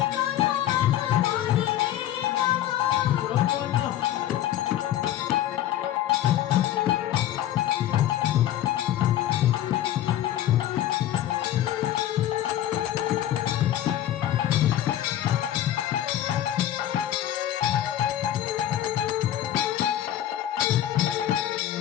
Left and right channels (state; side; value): quieter; right; 12.4 dB